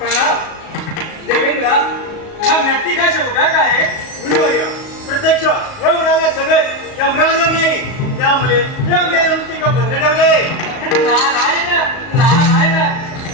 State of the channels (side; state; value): right; late; 37 ms